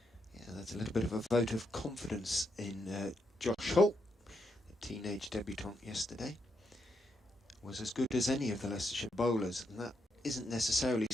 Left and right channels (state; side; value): normal; both; correlation 0.81